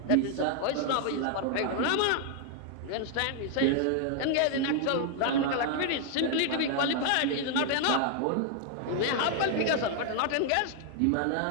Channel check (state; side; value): different; both; correlation 0.00